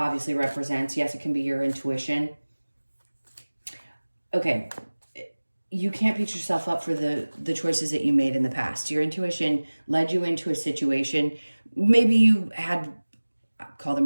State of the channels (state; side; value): inverted; both; correlation -1.00